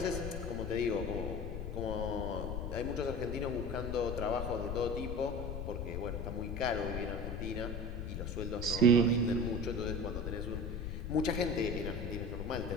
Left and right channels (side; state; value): left; noise; rumble, 4 dB below the sound